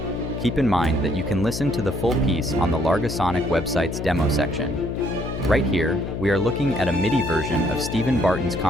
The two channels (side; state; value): left; noise; hum, 5 dB below the sound